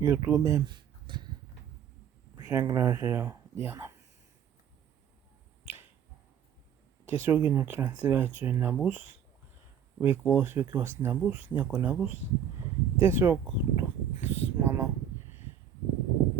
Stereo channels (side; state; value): left; quieter; 8.7 dB